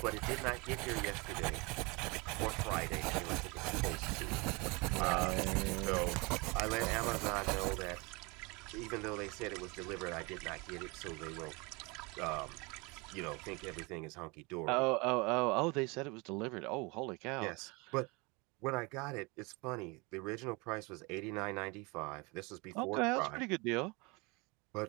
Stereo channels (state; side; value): quieter; left; 27.5 dB